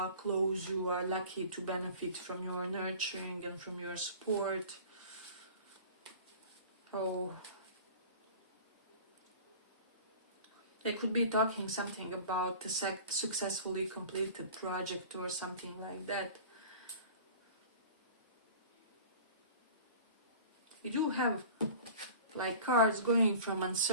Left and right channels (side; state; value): both; inverted; correlation -0.41